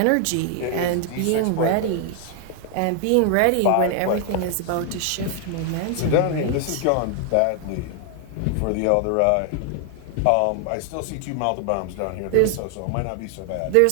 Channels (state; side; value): different; both; correlation 0.00